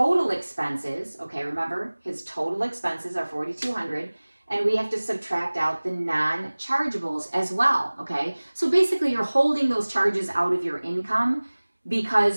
expenses, okay, remember his total expenses are $4,200, and we have to subtract out the non-chargeables as well, okay? So basically you're holding those charges out of your income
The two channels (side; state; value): both; inverted; correlation -1.00